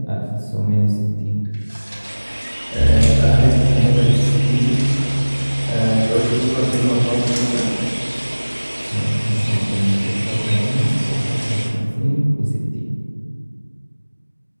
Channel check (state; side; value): inverted; both; correlation -1.00